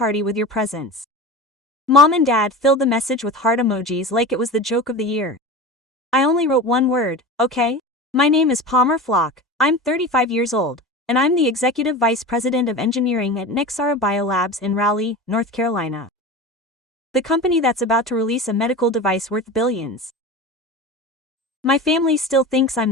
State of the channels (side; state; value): both; normal; correlation 0.30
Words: with your presence. Mom and Dad filled the message with heart emojis like it was the joke of the year. I only wrote one word, okay? My name is Palmer Flock, I'm 35 years old, and I'm the Executive Vice President of Engineering at Nexara Biolabs in Raleigh, North Carolina. The company that's about to release a medical device worth billions. My family still thinks I'm